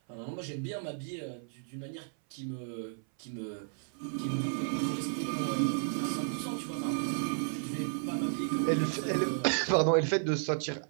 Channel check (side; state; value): left; silent; 56 dB below the other